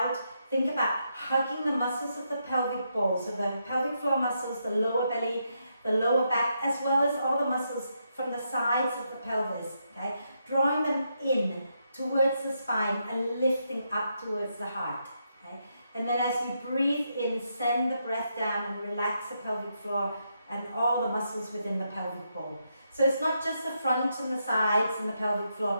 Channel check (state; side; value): inverted; both; correlation -0.81